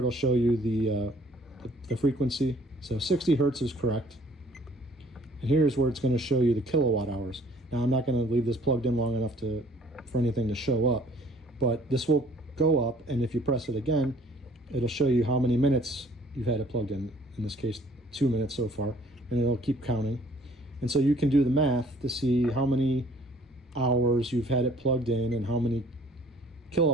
show you the frequency. So 60 hertz is correct. And here's where it's going to show you the kilowatt hours. Now I'm not going to leave this plugged in long enough for anything to show up, but this will go up, and if you press it again, it'll show you how many minutes you've had it plugged in this case 2 minutes so far, and it'll keep counting. And so you can do the math to see how many hours you've had it plugged in and how many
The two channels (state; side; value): normal; both; correlation 0.57